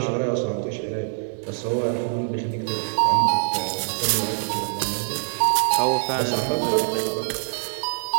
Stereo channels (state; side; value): silent; left; digital silence